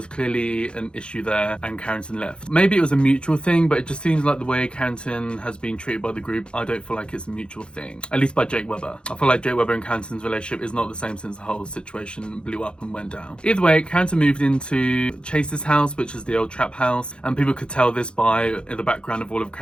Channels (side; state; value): right; late; 0.054 ms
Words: clearly an issue there and Carrington left. Maybe it was a mutual thing, but it just seems like the way Carrington has been treated by the group, I don't feel like it's a mutual thing. At least by Jake Webber. I feel like Jake Webber and Carrington's relationship is not the same since the whole situation blew up and went down. Either way, Carrington moved into Chase's house, which is the old trap house, and people could tell this by the background of all of